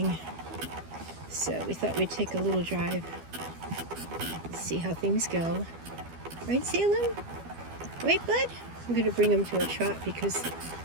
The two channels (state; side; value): late; left; 12 ms